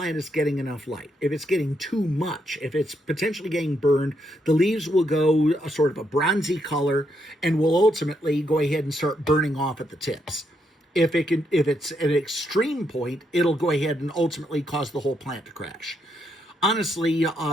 is getting enough light. If it's getting too much, if it's potentially getting burned, the leaves will go a sort of a bronzy color and will ultimately go ahead and start burning off at the tips. If it's at an extreme point, it'll go ahead and ultimately cause the whole plant to crash. Honestly,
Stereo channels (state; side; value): normal; both; correlation 0.78